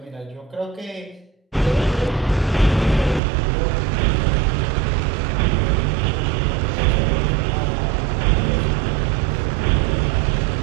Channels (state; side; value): drops out; left; at 3.2 s